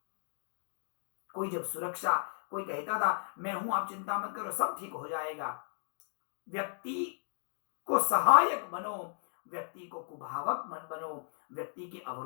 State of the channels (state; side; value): silent; right; digital silence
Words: कोई जब सुरक्षा, कोई कहता था मैं हूं आप चिंता मत करो सब ठीक हो जाएगा। व्यक्ति को सहायक बनो, व्यक्ति को कुभावक मत बनो, व्यक्ति के